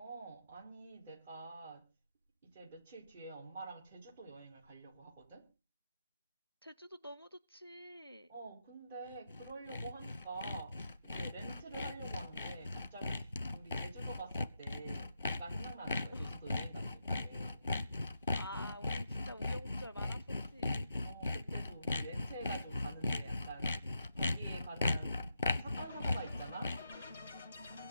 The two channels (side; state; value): both; inverted; correlation -0.84